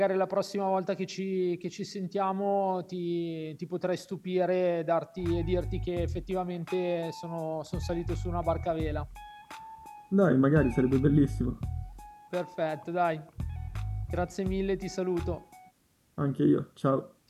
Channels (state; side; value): identical; both; correlation 1.00